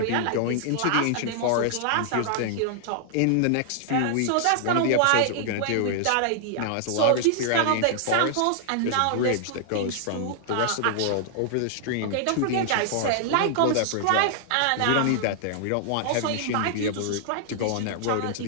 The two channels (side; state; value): both; different; correlation -0.01